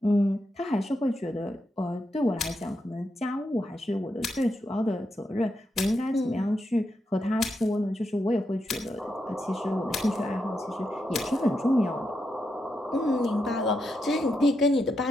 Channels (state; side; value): normal; both; correlation 0.84